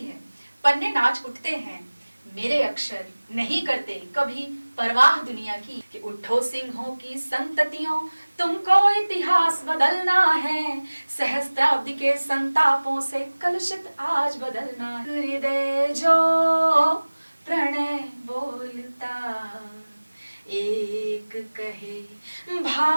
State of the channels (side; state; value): both; inverted; correlation -1.00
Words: पन्ने नाच उठते हैं, मेरे अक्षर नहीं करते कभी परवाह दुनिया की। कि उठो सिंहों की संततियों, तुमको इतिहास बदलना है, सहस्त्राब्दी के संतापों से कलुषित आज बदलना। हृदय जो प्रणय बोलता एक कहे,